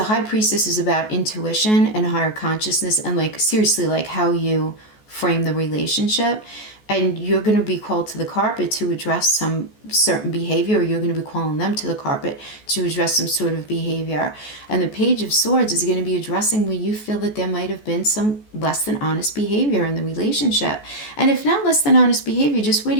High Priestess is about intuition and higher consciousness and like seriously like how you frame the relationship. And you're going to be called to the carpet to address some certain behavior, or you're going to be calling them to the carpet to address some sort of behavior. And the Page of Swords is going to be addressing where you feel that there might have been some less than honest behavior in the relationship. And if not less than honest behavior, just where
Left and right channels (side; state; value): right; late; 14 ms